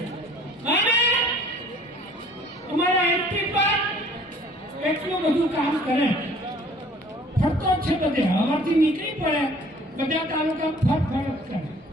અને અમારા એમપી પર એટલું બધું કામ કરે. ફરતો જ છે બધે. હવાથી નીકળી પડે બધા તાલુકા ફરફર કરે.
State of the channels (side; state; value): both; normal; correlation 0.53